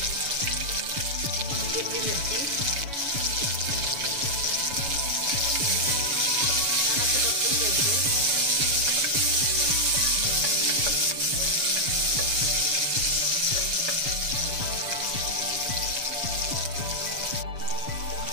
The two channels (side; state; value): left; late; 7.1 ms